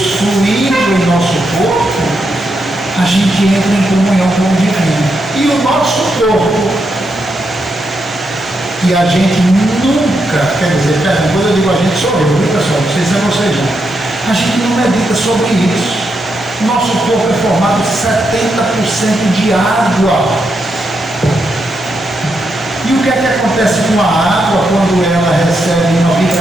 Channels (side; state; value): both; normal; correlation 0.82